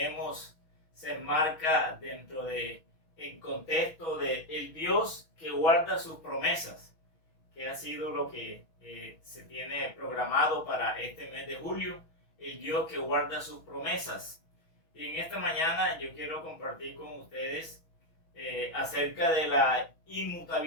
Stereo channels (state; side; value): late; right; 6.2 ms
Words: se enmarca dentro de el contexto de el Dios que guarda sus promesas, que ha sido lo que se tiene programado para este mes de julio, el Dios que guarda sus promesas. Y en esta mañana yo quiero compartir con ustedes acerca de la